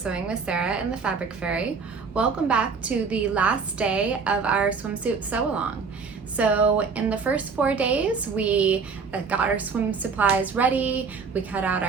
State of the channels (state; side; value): quieter; left; 5.2 dB